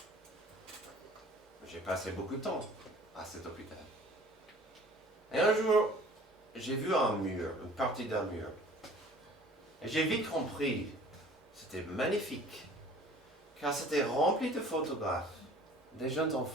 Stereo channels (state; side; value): normal; both; correlation 0.49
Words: J'ai passé beaucoup de temps à cet hôpital. Et un jour, j'ai vu un mur, une partie d'un mur. Et j'ai vite compris, c'était magnifique, car c'était rempli de photographes, des jeunes